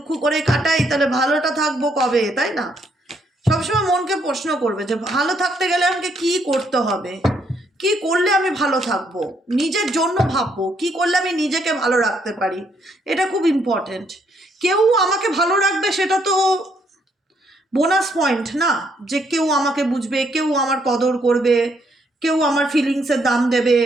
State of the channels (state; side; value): normal; both; correlation 0.72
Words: করে কাটাই তাহলে ভালোটা থাকবো কবে, তাই না? সবসময় মনকে প্রশ্ন করবে যে ভালো থাকতে গেলে আমাকে কি করতে হবে, কি করলে আমি ভালো থাকবো, নিজের জন্য ভাববো কি করলে আমি নিজেকে ভালো রাখতে পারি। এটা খুব ইম্পর্টেন্ট। কেউ আমাকে ভালো রাখবে সেটা তো বোনাস পয়েন্ট না, যে কেউ আমাকে বুঝবে, কেউ আমার কদর করবে, কেউ আমার ফিলিংসের দাম দেবে,